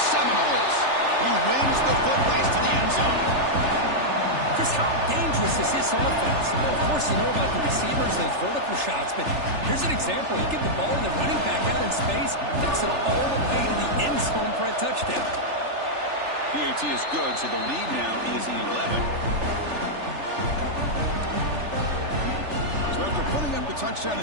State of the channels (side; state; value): left; late; 3.4 ms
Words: Seminoles. He wins the foot race to the end zone. Chris, how dangerous is this offense? Well, of course, you know about the receivers, those vertical shots, but here's an example. You get the ball to the running back out in space, takes it all the way to the end zone for a touchdown. PAT is good, so the lead now is 11. So after putting up the touchdown,